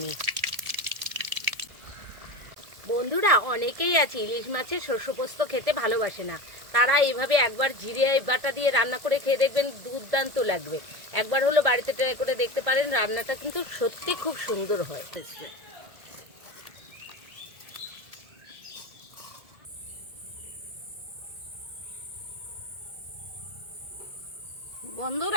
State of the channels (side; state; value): left; late; 1.7 ms